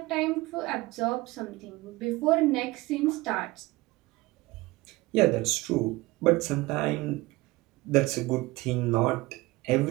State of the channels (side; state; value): left; quieter; 20.9 dB